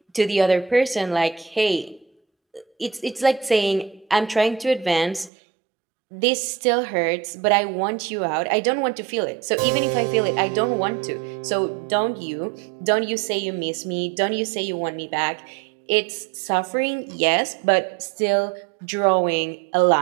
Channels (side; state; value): left; drops out; at 5.3 s